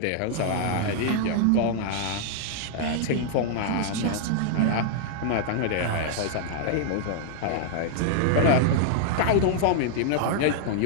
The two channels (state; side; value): different; both; correlation -0.01